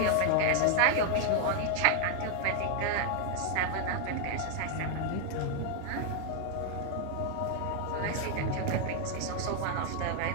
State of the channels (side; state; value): both; different; correlation 0.00